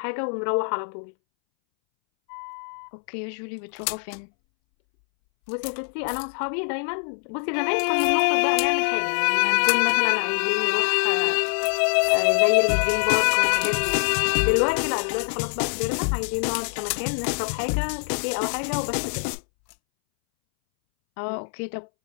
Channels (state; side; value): silent; right; 63 dB below the other